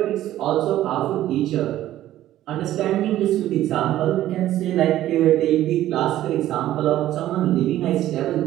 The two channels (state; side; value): quieter; left; 13.5 dB